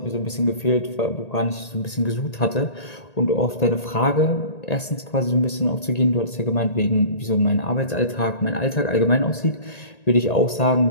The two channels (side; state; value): right; late; 1.8 ms